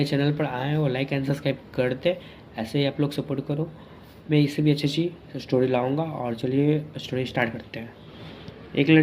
चैनल पर आए हैं वो लाइक एंड सब्सक्राइब कर दे। ऐसे ही आप लोग सपोर्ट करो। मैं इससे भी अच्छी अच्छी स्टोरी लाऊँगा। और चलिए स्टोरी स्टार्ट करते हैं। एक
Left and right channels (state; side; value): identical; both; correlation 1.00